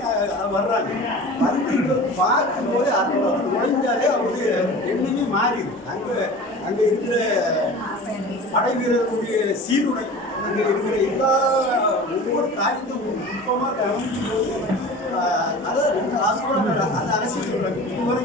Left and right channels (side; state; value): both; normal; correlation 0.37